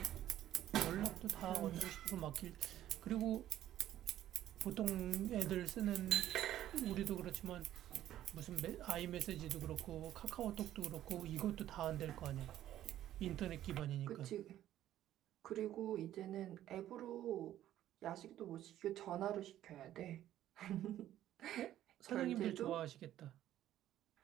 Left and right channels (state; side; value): quieter; left; 12.6 dB